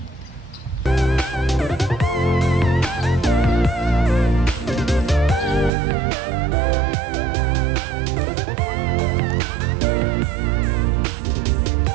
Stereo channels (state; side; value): drops out; left; at 5.7 s